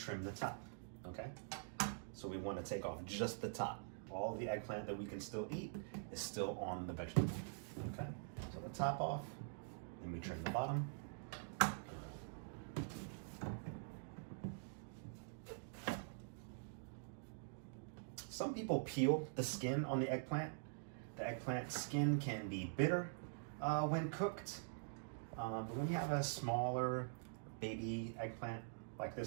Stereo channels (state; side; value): silent; left; digital silence